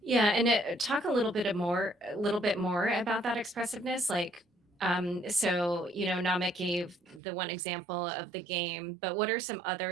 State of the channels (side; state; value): left; drops out; at 7.2 s